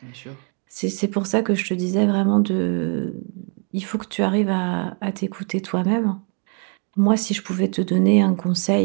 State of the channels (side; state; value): left; quieter; 39.0 dB